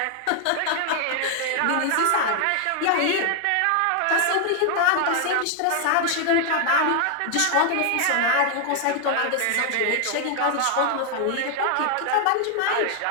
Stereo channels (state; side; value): different; both; correlation 0.00